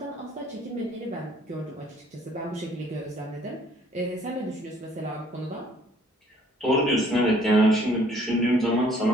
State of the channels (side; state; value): both; normal; correlation 0.60